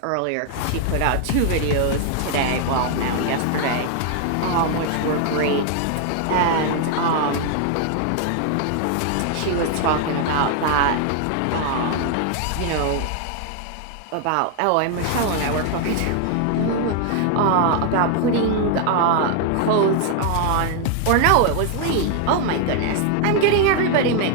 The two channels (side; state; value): both; different; correlation 0.00